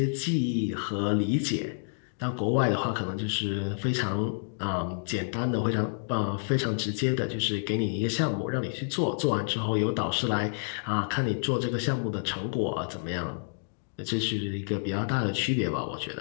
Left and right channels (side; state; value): right; silent; digital silence